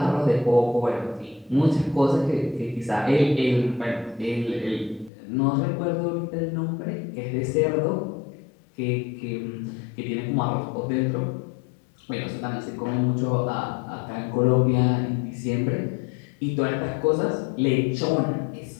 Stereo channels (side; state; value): right; drops out; at 5.1 s